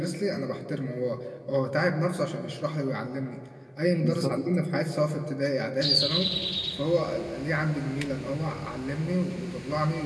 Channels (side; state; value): both; identical; correlation 1.00